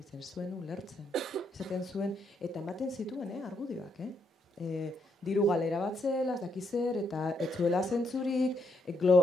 zuen ulertzen. Esaten zuen, eta ematen zituen, argudioak, diru galera bat zela, ez dakizer, eta ez zuela zentzurik,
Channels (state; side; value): normal; both; correlation 0.76